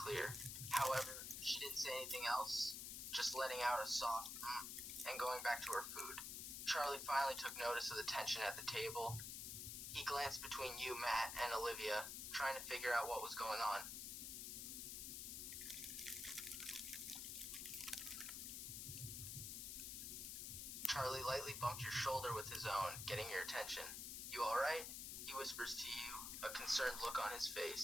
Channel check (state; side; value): noise; left; hiss, 5 dB below the sound